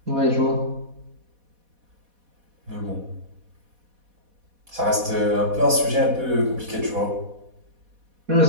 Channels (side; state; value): left; late; 4.1 ms